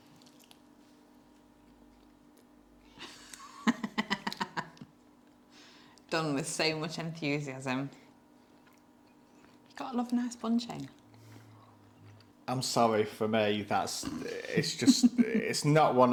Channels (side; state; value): both; identical; correlation 1.00